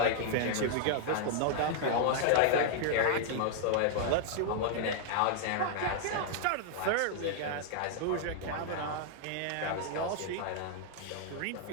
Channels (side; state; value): both; different; correlation 0.00